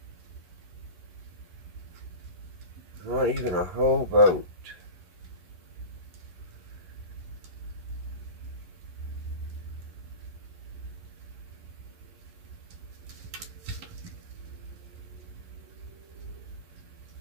Not even a whole volt.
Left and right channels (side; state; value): left; late; 11 ms